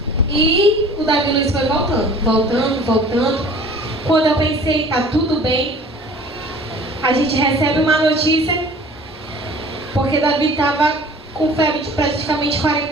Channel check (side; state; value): both; normal; correlation 0.47